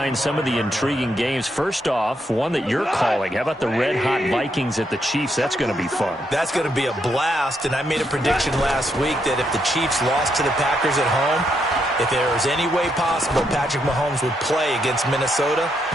some of the intriguing games. First off, one that you're calling. How about the red-hot Vikings at the Chiefs? That's going to be fun. That's going to be a blast, and I made a prediction last week that if the Chiefs lost to the Packers at home, if there was any way possible Patrick Mahomes would play against Minnesota,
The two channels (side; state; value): both; normal; correlation 0.78